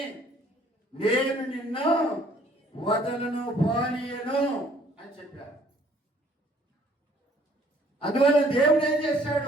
నేను నిన్ను వదలను, పోనీయను అని చెప్పాడు. అందువల్ల దేవుడు ఏం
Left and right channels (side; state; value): both; normal; correlation 0.59